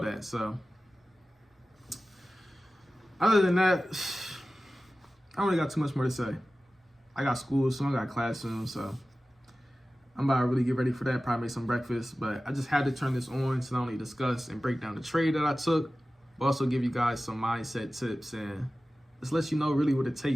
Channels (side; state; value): both; normal; correlation 0.96